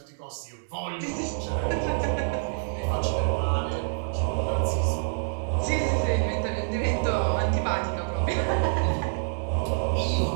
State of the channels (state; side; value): silent; left; 60 dB below the other